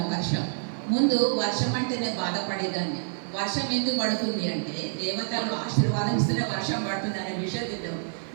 వర్షం. ముందు వర్షం అంటేనే బాధపడేదాన్ని. వర్షం ఎందుకు పడుతుంది అంటే దేవతలు ఆశీర్వాదం ఇస్తేనే వర్షం పడుతుంది అనే విషయం తెలియదు.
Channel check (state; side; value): silent; left; 60 dB below the other